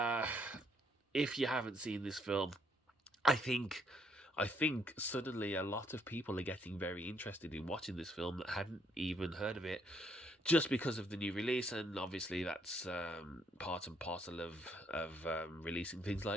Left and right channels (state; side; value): normal; both; correlation 0.70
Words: If you haven't seen this film, I think suddenly a lot of people are getting very interested in watching this film that hadn't even heard of it, just because of the new release, and obviously that's part and parcel of releasing things